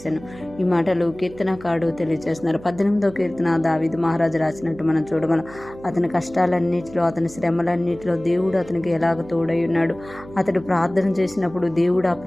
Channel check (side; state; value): right; noise; hum, 18 dB below the sound